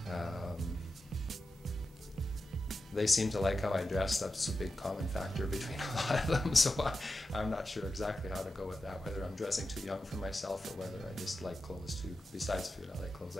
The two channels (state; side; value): normal; both; correlation 0.91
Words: They seem to like how I dress. That's a big common factor between a lot of them, so I'm not sure exactly how to go with that, whether I'm dressing too young for myself or whether I just like clothes too. Besides food, I like clothes.